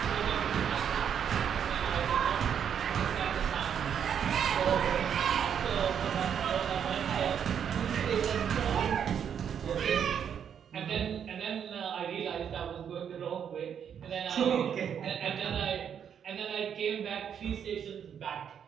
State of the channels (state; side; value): quieter; left; 8.2 dB